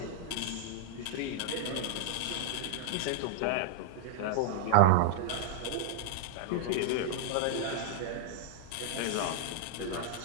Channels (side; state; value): both; different; correlation -0.01